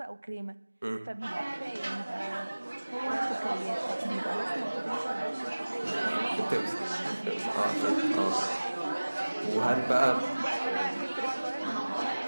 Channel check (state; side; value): inverted; both; correlation -1.00